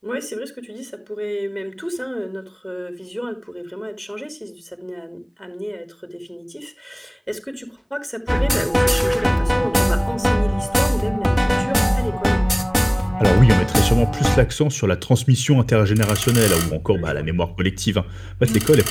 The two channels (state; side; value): identical; both; correlation 1.00